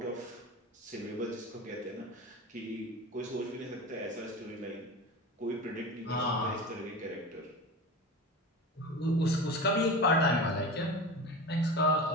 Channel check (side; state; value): both; normal; correlation 0.29